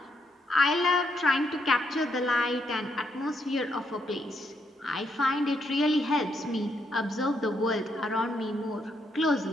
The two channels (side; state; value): both; normal; correlation 0.77